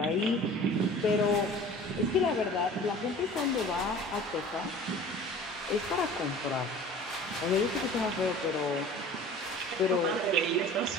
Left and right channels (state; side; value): normal; both; correlation 0.43